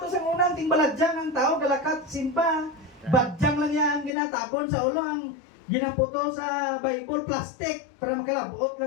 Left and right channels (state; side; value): drops out; right; at 4.1 s